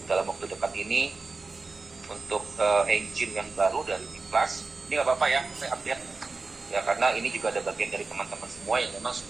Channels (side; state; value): left; quieter; 3.9 dB